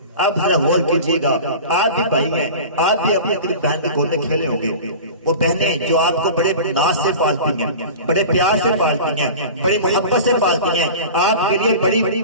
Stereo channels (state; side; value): inverted; both; correlation -0.35